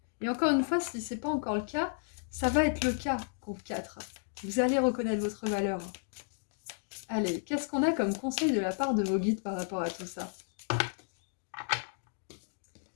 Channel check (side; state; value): right; silent; digital silence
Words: Et encore une fois, si c'est pas encore le cas, ça va être le cas, groupe 4. Vous allez reconnaître votre valeur. Allez, qu'est-ce qu'on a comme conseil de la part de vos guides par rapport à tout ça?